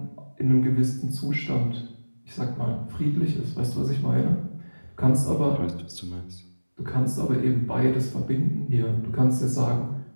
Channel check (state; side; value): inverted; both; correlation -1.00